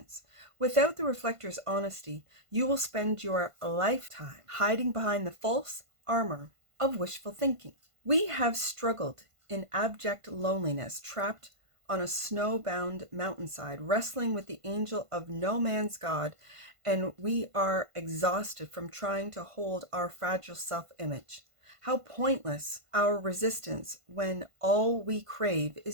Without the reflector's honesty, you will spend your lifetime hiding behind the false armor of wishful thinking. We have struggled in abject loneliness, trapped on a snowbound mountainside, wrestling with the angel of no man's God, and we are exhausted from trying to hold our fragile self-image. How pointless our resistance when all we crave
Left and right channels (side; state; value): left; late; 1.5 ms